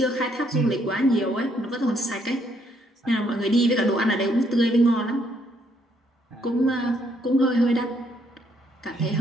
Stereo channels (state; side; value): normal; both; correlation 0.71